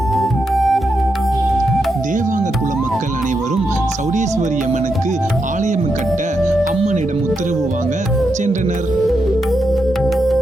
தேவாங்க குல மக்கள் அனைவரும் சௌடேஸ்வரி அம்மனுக்கு ஆலயம் கட்ட அம்மனிடம் உத்தரவு வாங்க சென்றனர்.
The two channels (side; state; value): both; normal; correlation 0.84